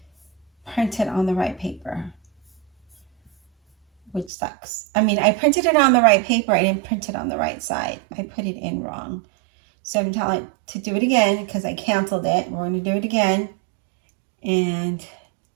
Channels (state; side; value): drops out; left; at 4.3 s